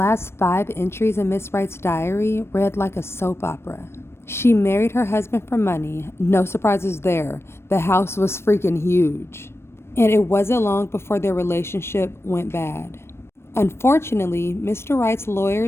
5 entries in Miss Wright's diary read like a soap opera. She married her husband for money. No surprises there. The house was freaking huge. And it wasn't long before their relationship went bad. Unfortunately, Mr. Wright's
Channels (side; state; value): right; late; 0.12 ms